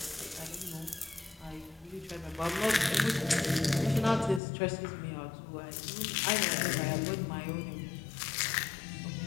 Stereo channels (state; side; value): drops out; right; at 4.4 s